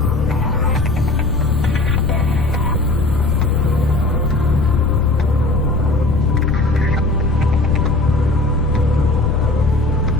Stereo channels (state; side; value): noise; left; rumble, 3 dB below the sound